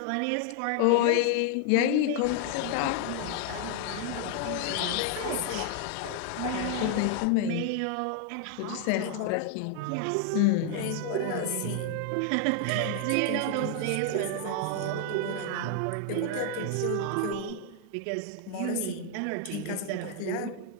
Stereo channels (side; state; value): both; different; correlation 0.00